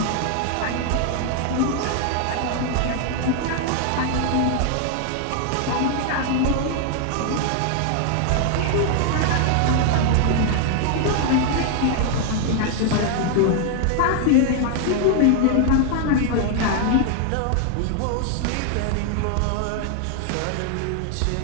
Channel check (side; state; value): both; different; correlation 0.00